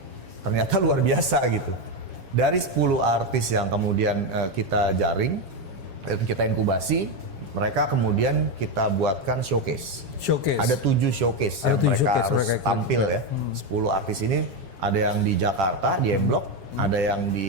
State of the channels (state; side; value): late; left; 7.3 ms